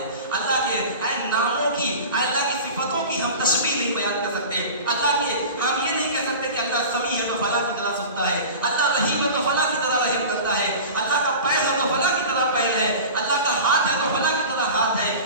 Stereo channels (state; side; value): inverted; both; correlation -0.34